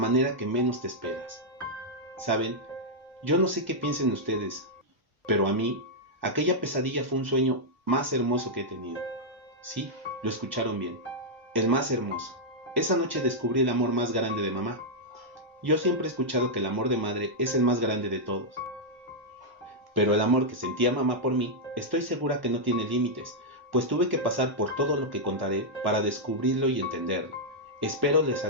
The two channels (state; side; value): normal; both; correlation -0.05